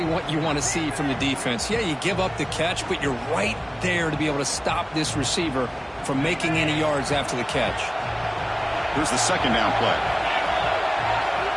what you want to see from the defense. Yeah, you give up the catch, but you're right there to be able to stop this receiver from making any yards after the catch. Here's the 2nd down play.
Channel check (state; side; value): identical; both; correlation 1.00